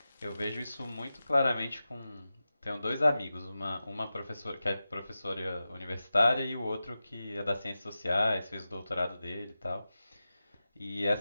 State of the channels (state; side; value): inverted; both; correlation -0.93